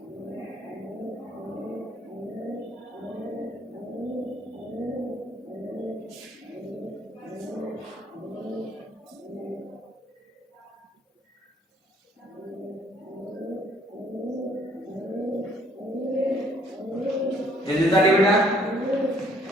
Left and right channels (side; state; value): both; normal; correlation 0.63